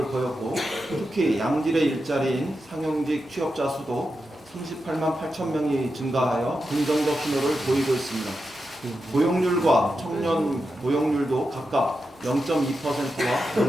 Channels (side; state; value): both; normal; correlation 0.88